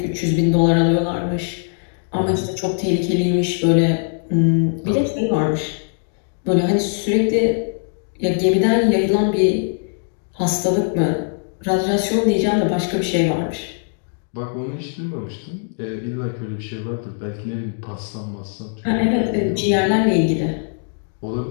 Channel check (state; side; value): silent; right; 65 dB below the other